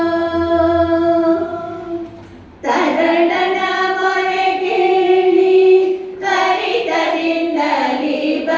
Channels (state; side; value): identical; both; correlation 1.00